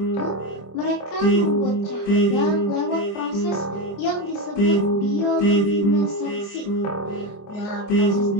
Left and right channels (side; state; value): right; late; 25 ms